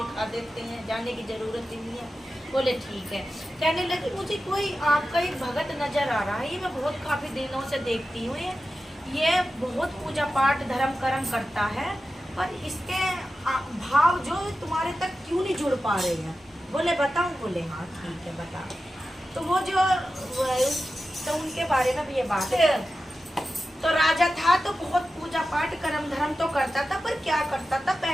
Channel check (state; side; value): normal; both; correlation 0.93